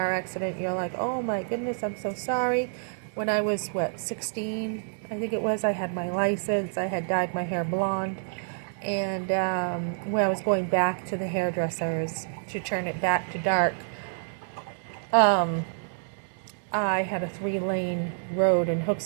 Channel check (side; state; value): left; silent; 59 dB below the other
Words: accident, you're like, oh my goodness, I'm so sorry. When I was, 16, I think it was, I had my license, I had dyed my hair blonde, and when I was going back to the hairdressers to turn it back to dark, I had a 3-lane road in